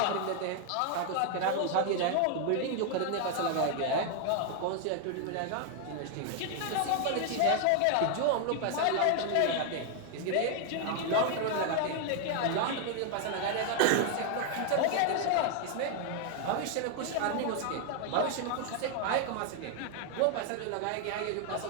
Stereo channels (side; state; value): both; different; correlation 0.00